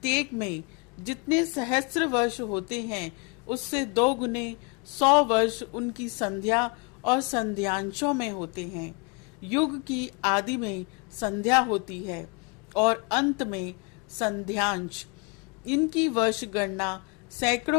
में जितने सहस्त्र वर्ष होते हैं उससे 2 गुने 100 वर्ष उनकी संध्या और संध्यांशों में होते हैं। युग की आदि में संध्या होती है और अंत में संध्यांश। इनकी वर्ष गणना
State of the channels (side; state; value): right; quieter; 32.3 dB